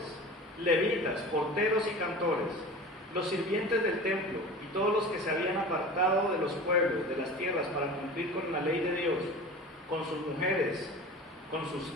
levitas, porteros y cantores, los sirvientes del templo y todos los que se habían apartado de los pueblos, de las tierras, para cumplir con la ley de Dios, con sus mujeres, con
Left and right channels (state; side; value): normal; both; correlation 0.36